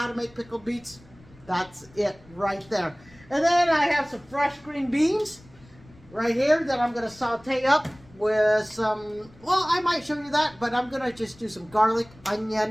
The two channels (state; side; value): noise; left; rumble, 25 dB below the sound